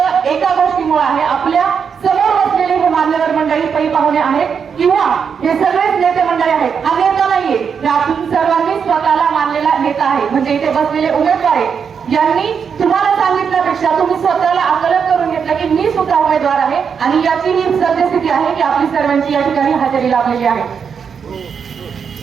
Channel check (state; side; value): quieter; left; 6.6 dB